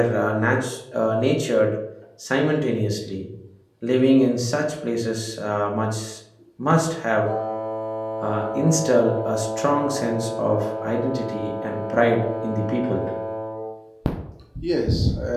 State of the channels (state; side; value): identical; both; correlation 1.00